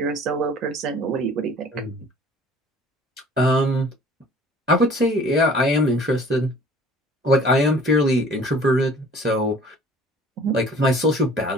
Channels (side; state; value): both; normal; correlation 0.50